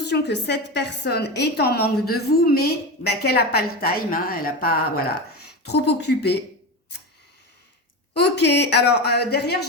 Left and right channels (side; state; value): both; normal; correlation 0.21